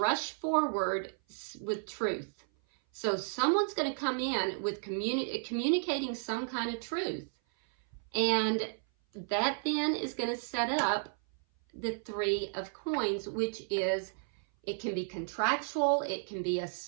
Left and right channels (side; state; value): left; silent; 56 dB below the other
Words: forward with truth. So someone's going to come in with communicating some kind of truth. And that then is going to set up the Three of Coins, which is, it can be contractual, it can be a